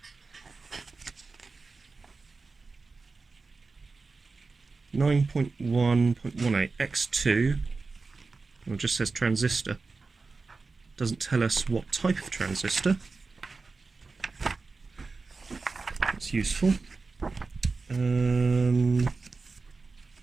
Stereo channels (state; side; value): quieter; left; 4.1 dB